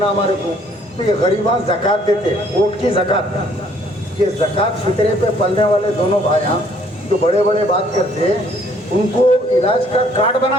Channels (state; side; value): normal; both; correlation 0.62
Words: हमारे को, तो ये गरीबा ज़कात देते, वोट की ज़कात। ये ज़कात फितरे पे पलने वाले दोनों भाइयाँ जो बड़े बड़े बात करते, उनको इलाज का कार्ड